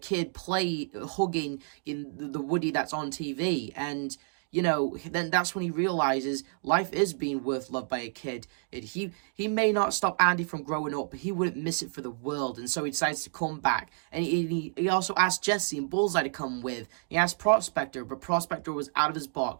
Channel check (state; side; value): silent; left; 58 dB below the other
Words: hugging in the Woody that's on TV, and, you know, then that's when he realizes life is being worth loved by a kid. He may not stop Andy from growing up, but he wouldn't miss it for the world, and so he decides to come back. And he also asked Jessie and Bullseye to come with. He asked Prospector, but Prospector was out of his